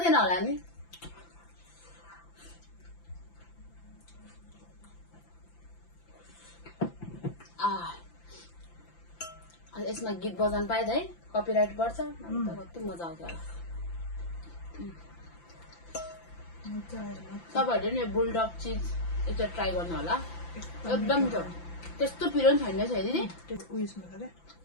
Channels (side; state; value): right; late; 5.9 ms